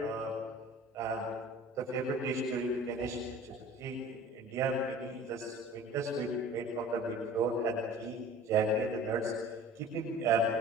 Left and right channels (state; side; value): normal; both; correlation 0.44